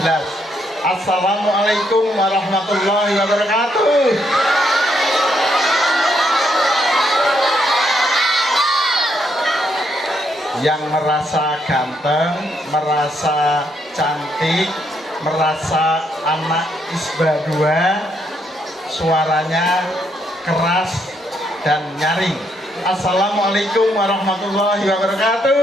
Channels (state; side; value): normal; both; correlation 0.75